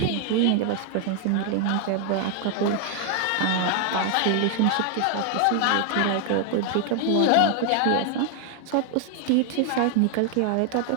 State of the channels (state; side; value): different; both; correlation 0.00